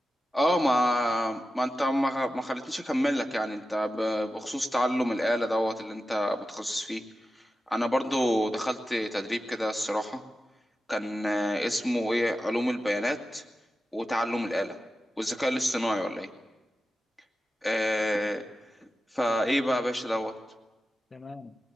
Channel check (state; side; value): normal; both; correlation 0.92